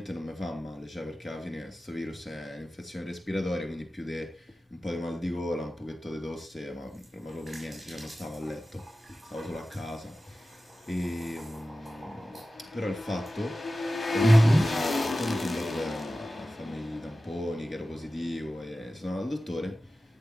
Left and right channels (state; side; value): normal; both; correlation 0.95